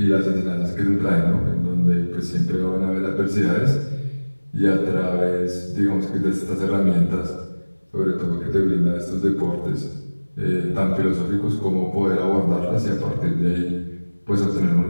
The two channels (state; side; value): inverted; both; correlation -1.00